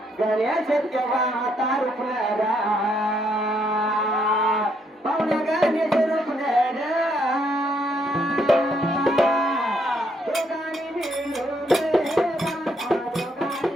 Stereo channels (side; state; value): both; normal; correlation 0.72